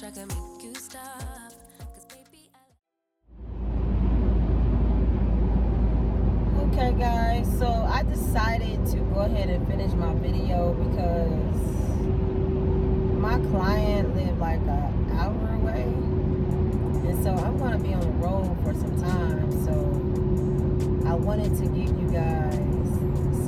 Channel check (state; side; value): identical; both; correlation 1.00